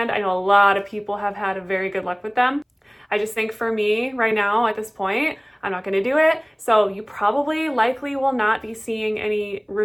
I know a lot of people have had a very good luck with them. I just think for me right now at this point, I'm not going to do it. So you probably likely will not be seeing any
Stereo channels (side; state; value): both; identical; correlation 1.00